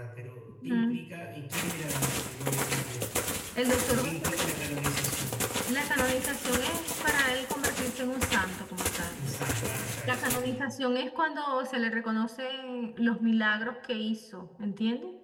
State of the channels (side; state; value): both; identical; correlation 1.00